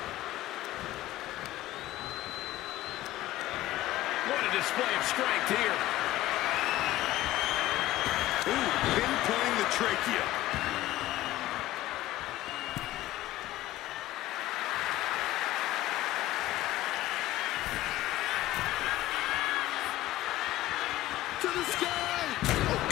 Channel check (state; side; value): quieter; right; 15.7 dB